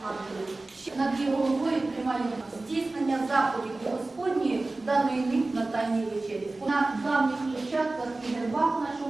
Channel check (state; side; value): quieter; left; 3.1 dB